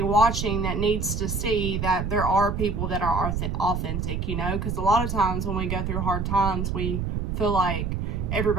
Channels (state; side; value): noise; right; rumble, 2 dB below the sound